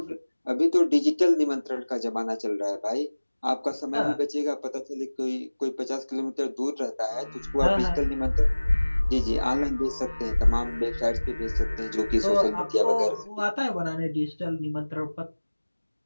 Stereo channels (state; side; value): inverted; both; correlation -1.00